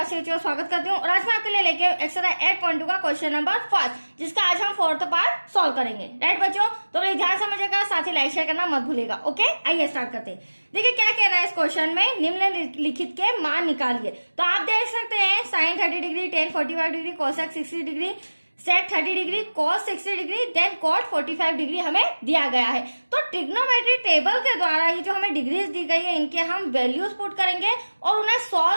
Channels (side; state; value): both; inverted; correlation -1.00